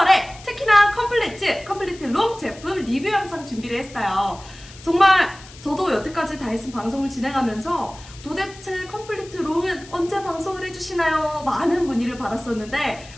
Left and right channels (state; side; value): noise; left; hiss, 20 dB below the sound